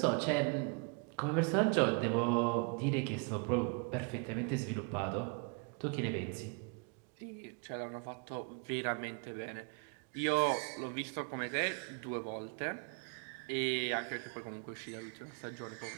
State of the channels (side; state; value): left; quieter; 35.4 dB